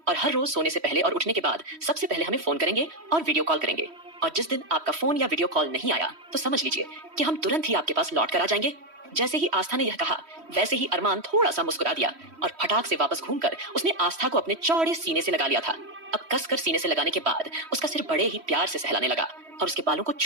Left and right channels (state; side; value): late; left; 3.1 ms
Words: और हर रोज सोने से पहले और उठने के बाद सबसे पहले हमें फोन करेंगे और वीडियो कॉल करेंगे, और जिस दिन आपका फोन या वीडियो कॉल नहीं आया तो समझ लीजिए कि हम तुरंत ही आपके पास लौट कर आ जाएंगे। जैसे ही आस्था ने यह कहा, वैसे ही अरमान थोड़ा सा मुस्कुरा दिया और फटाक से वापस घूमकर उसने आस्था को अपने चौड़े सीने से लगा लिया था। अब कसकर सीने से लगाने के बाद उसका सिर बड़े ही प्यार से सहलाने लगा और उसके बालों को